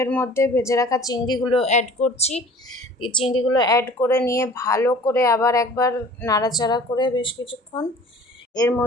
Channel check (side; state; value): both; normal; correlation 0.47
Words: এর মধ্যে ভেজে রাখা চিংড়িগুলো অ্যাড করছি। এই চিংড়িগুলো অ্যাড করে নিয়ে ভালো করে আবার একবার নাড়াচাড়া করে বেশ কিছুক্ষণ এর